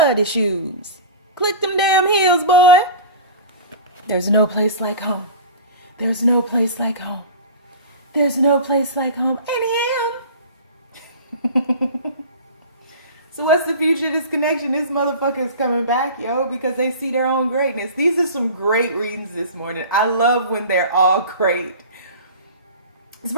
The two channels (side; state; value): both; inverted; correlation -0.35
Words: shoes. Click them damn heels, boy. There's no place like home. There's no place like home. There's no place like home. And him. So what's the future of this connection? This motherfucker is coming back, yo, because they see their own greatness. These are some great readings this morning. I love when they're all great. This